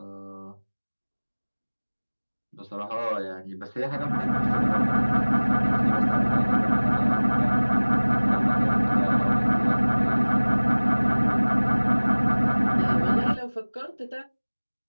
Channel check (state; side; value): inverted; both; correlation -1.00